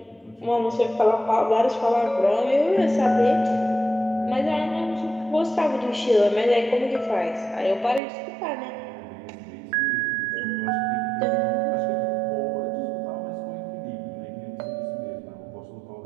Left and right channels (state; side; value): drops out; left; at 8.0 s